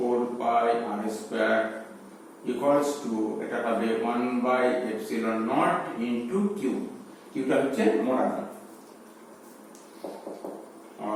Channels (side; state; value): both; identical; correlation 1.00